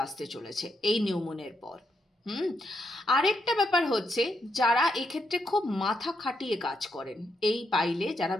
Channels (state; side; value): normal; both; correlation 0.80